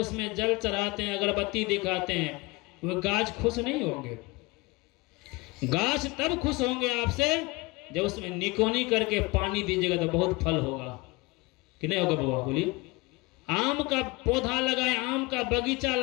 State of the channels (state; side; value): quieter; right; 23.5 dB